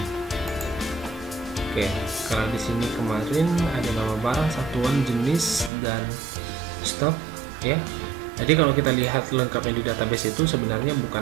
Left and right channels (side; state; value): left; drops out; at 5.7 s